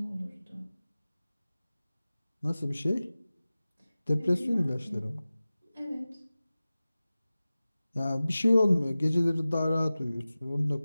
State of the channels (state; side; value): inverted; both; correlation -0.97